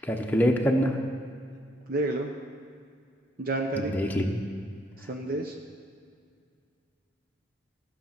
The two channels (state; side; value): normal; both; correlation 0.71